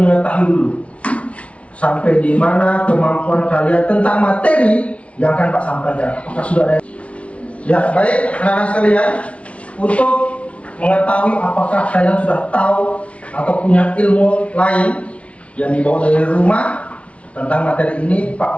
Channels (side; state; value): right; late; 0.063 ms